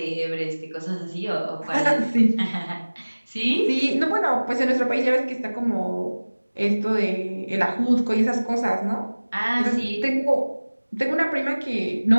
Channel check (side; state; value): both; inverted; correlation -1.00